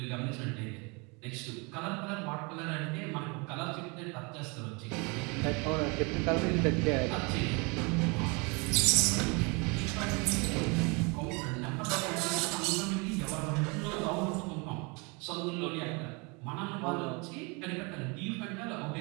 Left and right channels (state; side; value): quieter; left; 30.0 dB